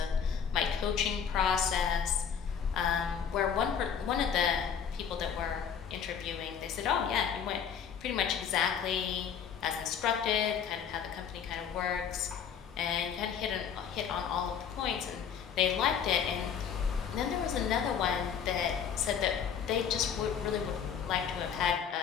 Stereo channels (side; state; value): right; quieter; 7.7 dB